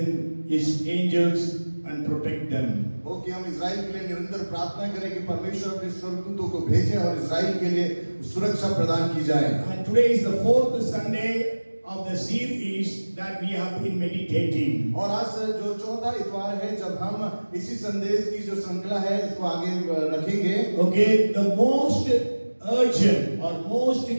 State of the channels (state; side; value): inverted; both; correlation -1.00